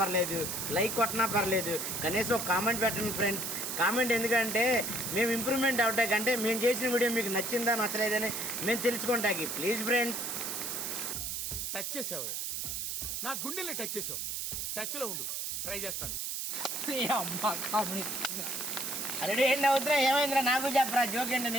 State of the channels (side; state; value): right; noise; hiss, 3 dB below the sound